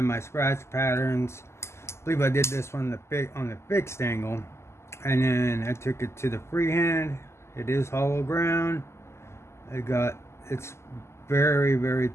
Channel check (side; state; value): right; late; 0.13 ms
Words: my scratch patterns. I believe I did this one on the fixed angle. And then I took it to the freehand. It is hollow ground. It's very